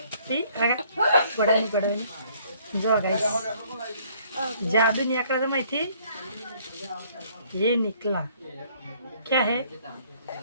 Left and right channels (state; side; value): inverted; both; correlation -0.62